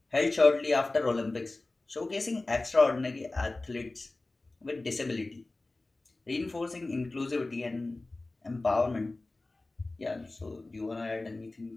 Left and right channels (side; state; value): right; quieter; 3.1 dB